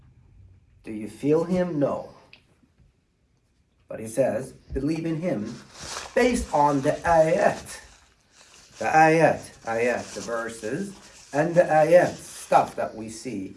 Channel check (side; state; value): both; identical; correlation 1.00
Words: Do you feel Him? No. But He says, believe in Him based on the ayat. The ayat, the verses, and the ayat, stuff that we see.